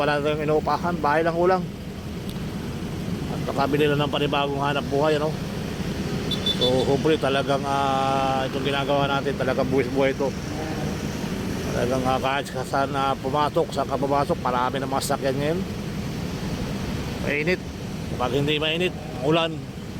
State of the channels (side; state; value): both; identical; correlation 1.00